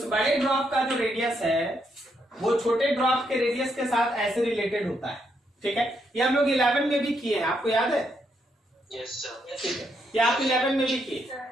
बड़े ड्रॉप का जो रेडियस है वो छोटे ड्रॉप के रेडियस के साथ ऐसे रिलेटेड होता है। ठीक है, ये हम लोग 11 में भी किए हैं, आपको याद है? Yes sir. ठीक है, ये आप 11 में भी किए।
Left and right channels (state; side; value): normal; both; correlation 0.77